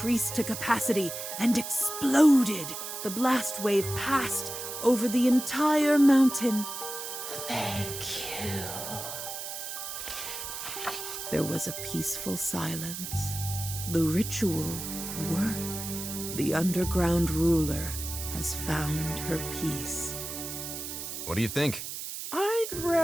to capacity and exploded. The blast wave passed over the entire mountain. Thank you. There was a peaceful silence. The ritual worked. The underground ruler has found her peace. What do you think? I'd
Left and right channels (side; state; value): right; noise; hiss, 7 dB below the sound